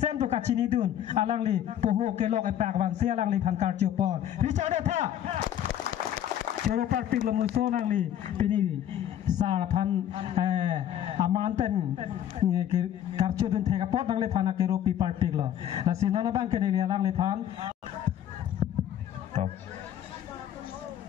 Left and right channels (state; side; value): quieter; right; 10.8 dB